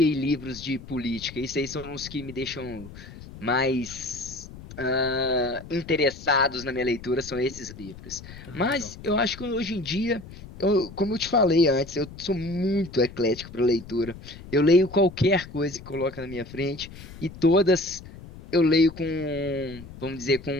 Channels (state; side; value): noise; left; rumble, 16 dB below the sound